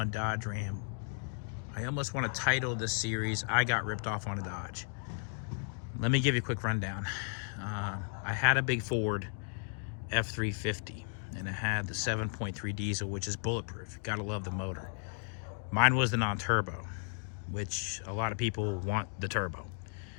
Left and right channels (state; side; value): silent; right; 55 dB below the other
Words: Dodge Ram. I almost want to title this series, I Got Ripped Off on a Dodge. Let me give you a quick rundown. I had a big Ford F350, and it had the 7.3 diesel, which is bulletproof. Gotta love the motor. Mine was the non-turbo, which a lot of people want the turbo.